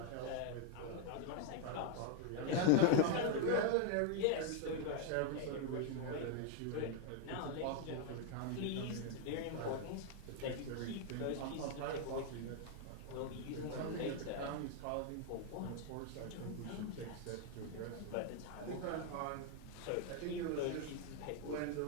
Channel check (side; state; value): both; different; correlation 0.00